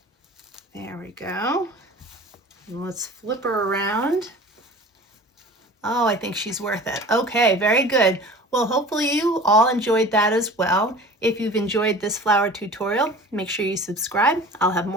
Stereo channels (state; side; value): normal; both; correlation 0.41